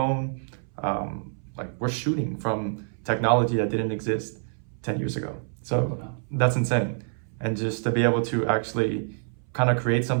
Like we're shooting from technology that didn't exist 10 years ago. So that's insane. And just to be able to actually kind of create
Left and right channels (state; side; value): silent; left; 60 dB below the other